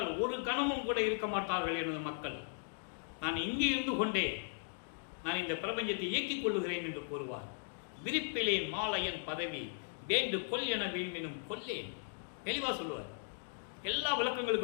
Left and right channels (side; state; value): right; silent; digital silence